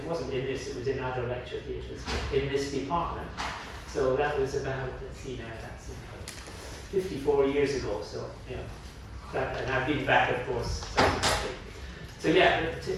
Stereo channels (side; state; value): both; identical; correlation 1.00